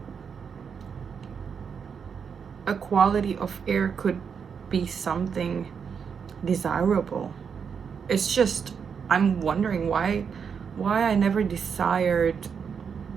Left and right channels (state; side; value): quieter; left; 6.6 dB